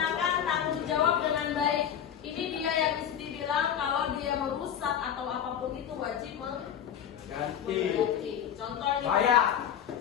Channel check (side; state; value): right; quieter; 9.2 dB